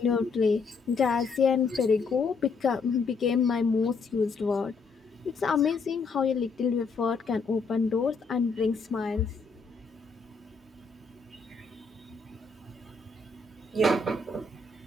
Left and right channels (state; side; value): quieter; right; 4.4 dB